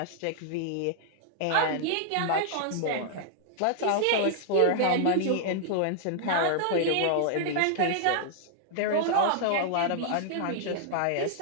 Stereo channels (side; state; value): both; different; correlation -0.01